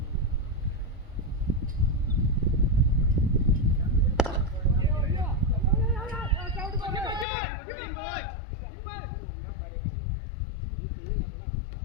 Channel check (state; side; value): drops out; right; at 7.2 s